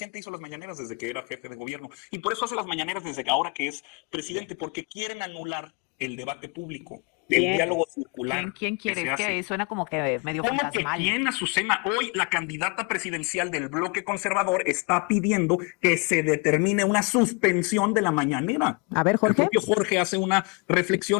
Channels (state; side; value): quieter; right; 32.6 dB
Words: hizo las mañaneras desde que era jefe de gobierno y por eso hace las mañaneras desde que ahora que es presidente, porque quieren anular el debate público, el diálogo circular. ¿Quién quiere? Que Es que suena como que medio fantasmal. ¿Quién, Azucena? Hoy la candidata presidencial del bloque conservador está pidiendo que se determine una suspensión de la mañanera. A ver, Jorge. El propio Jorge hace una